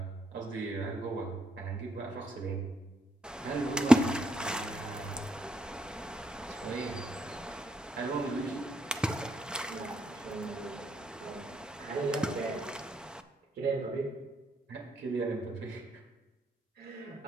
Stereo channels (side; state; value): both; normal; correlation 0.77